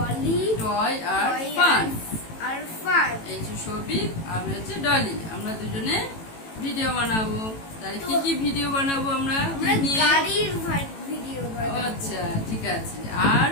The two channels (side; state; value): right; late; 18 ms